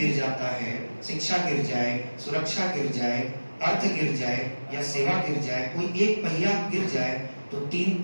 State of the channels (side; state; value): both; inverted; correlation -1.00